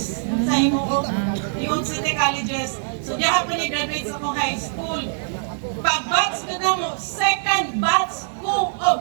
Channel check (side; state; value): left; silent; digital silence